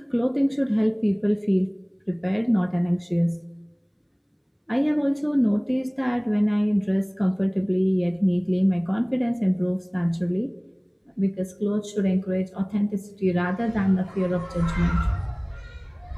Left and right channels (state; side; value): identical; both; correlation 1.00